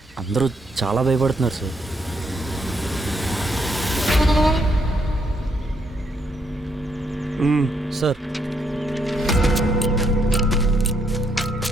అందరూ చాలా భయపడుతున్నారు సార్. సార్,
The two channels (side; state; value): both; normal; correlation 0.74